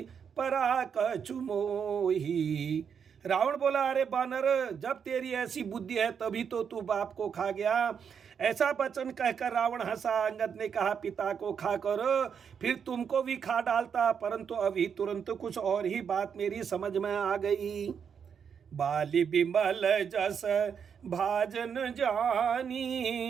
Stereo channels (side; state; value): left; quieter; 7.1 dB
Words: परा कछु मोही। रावण बोला, अरे बानर, जब तेरी ऐसी बुद्धि है तभी तो तू बाप को खा गया। ऐसा वचन कहकर रावण हंसा। अंगद ने कहा, पिता को खा करो फिर तुमको भी खा डालता, परंतु अभी तुरंत कुछ और ही बात मेरी समझ में आ गई। बाली बिमल जस भाजन